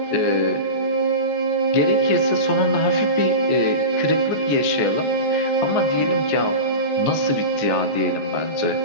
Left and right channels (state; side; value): late; right; 14 ms